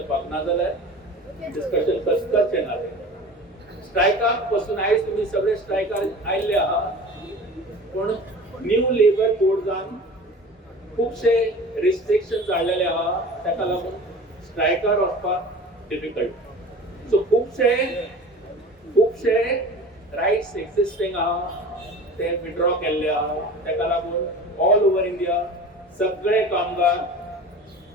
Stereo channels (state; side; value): normal; both; correlation 0.38